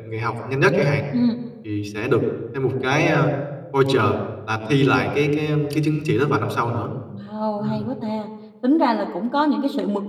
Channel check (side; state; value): both; identical; correlation 1.00